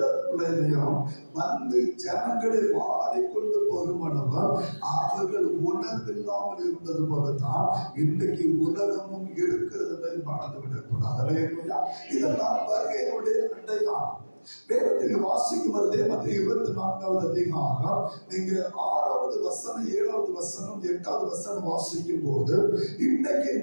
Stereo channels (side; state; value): both; inverted; correlation -1.00